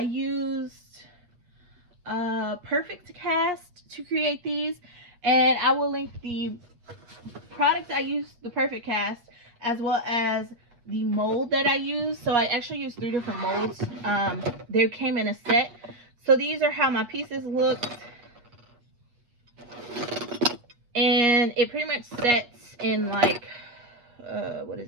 Perfect Cast to create these, and I will link the product I used, the Perfect Cast, as well as the mold that I used. So I actually used 3 different molds. They came in a set. So these are how my pieces looked, and it pretty much sets in like what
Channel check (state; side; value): late; left; 8.4 ms